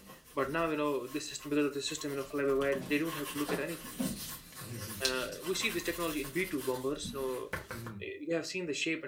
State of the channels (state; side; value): identical; both; correlation 1.00